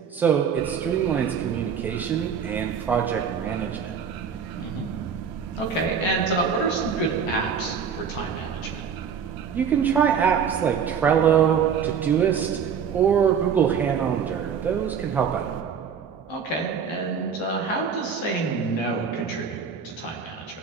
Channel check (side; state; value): left; quieter; 7.0 dB